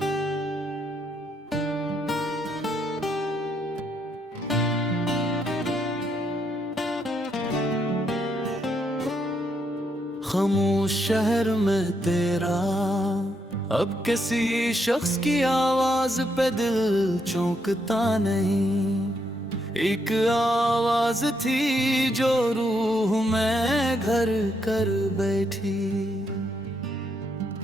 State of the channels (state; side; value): normal; both; correlation 0.77